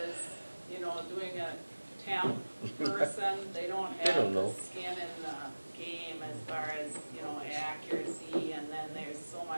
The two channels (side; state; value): both; inverted; correlation -1.00